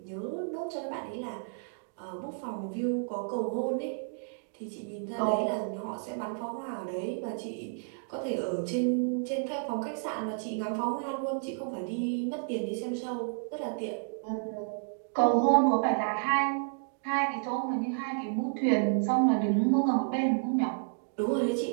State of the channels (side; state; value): left; silent; digital silence